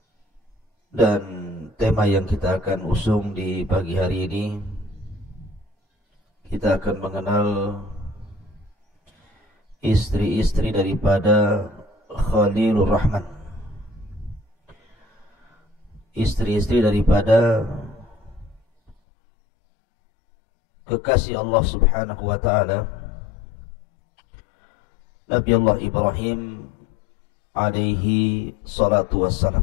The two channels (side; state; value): right; drops out; at 18.9 s